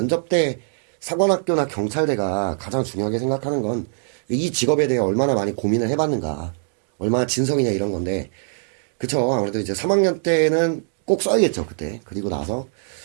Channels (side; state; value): left; silent; digital silence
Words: 때 사관학교나 경찰대가 가장 중요하게 생각하는 건 이 직업에 대해 얼마나 많이 고민을 해봤는가, 얼마나 진성이냐 이런 건데, 그쵸. 아무래도 이제 3학년 때는 꼭 써야겠죠, 그때. 그리고 나서